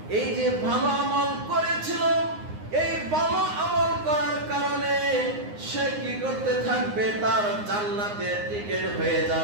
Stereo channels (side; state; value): left; late; 9.6 ms